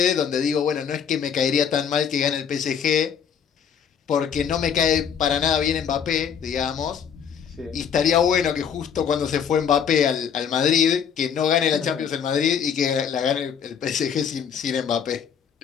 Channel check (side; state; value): right; quieter; 7.6 dB